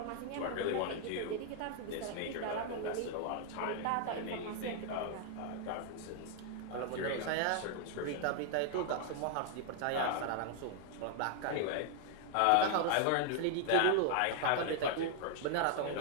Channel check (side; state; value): both; different; correlation 0.00